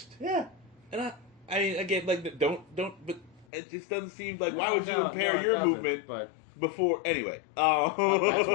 Yeah. And I mean, again, like, don't, but it just doesn't seem like, why would you impair your movement Anyway. That's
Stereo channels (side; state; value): right; drops out; at 3.5 s